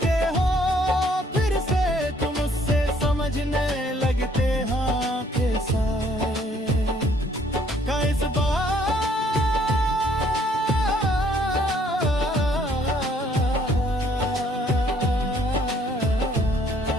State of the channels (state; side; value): normal; both; correlation 0.63